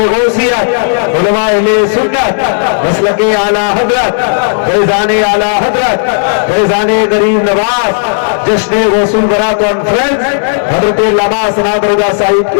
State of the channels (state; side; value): silent; right; digital silence